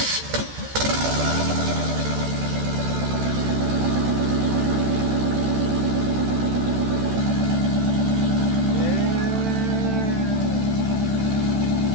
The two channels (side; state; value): left; late; 13 ms